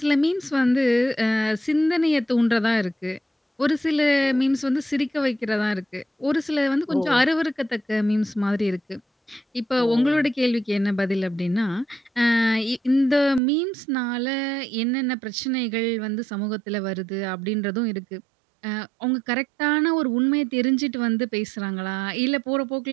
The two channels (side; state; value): left; drops out; at 13.4 s